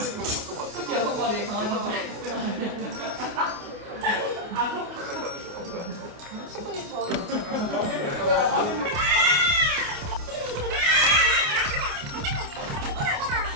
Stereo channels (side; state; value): left; late; 28 ms